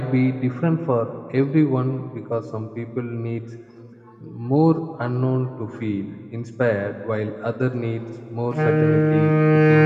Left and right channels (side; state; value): both; identical; correlation 1.00